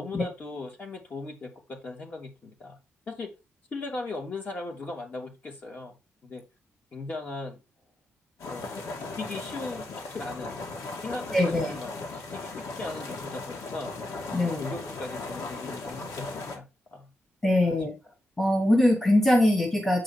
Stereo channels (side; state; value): both; normal; correlation 0.88